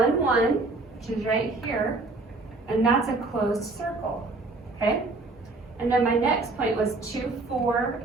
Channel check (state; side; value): quieter; left; 3.3 dB